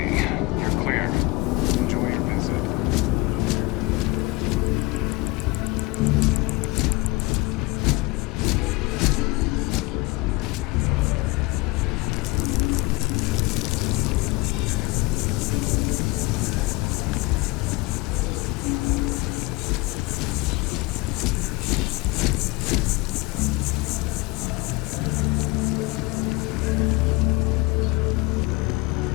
You're clear. Enjoy your visit.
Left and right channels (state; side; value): quieter; right; 23.2 dB